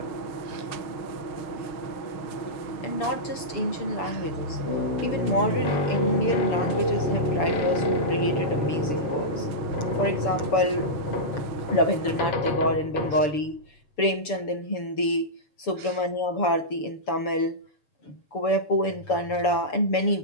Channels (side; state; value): right; late; 6.9 ms